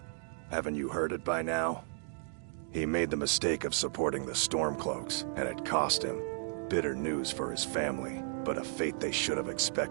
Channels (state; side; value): silent; left; digital silence